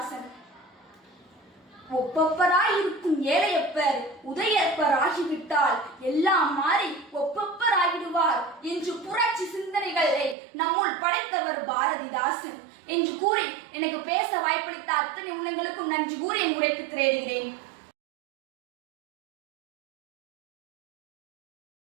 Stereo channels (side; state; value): left; drops out; at 10.4 s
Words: ஒப்பப்பராய் இருக்கும் ஏழையப்பர் உதயப்பர் ஆகிவிட்டால் எல்லாம் மாறி ஒப்பப்பர் ஆகிடுவார் என்று புரட்சி சிந்தனைகளை நம்முள் படைத்தவர் பாரதிதாசன் என்று கூறி எனக்கு பேச வாய்ப்பளித்த அத்தனை உள்ளங்களுக்கும் நன்றி கூறி என் உரைக்கு திரையிடுகிறேன்.